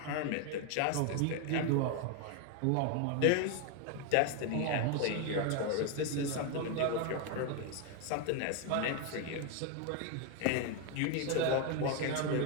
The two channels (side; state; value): both; different; correlation 0.01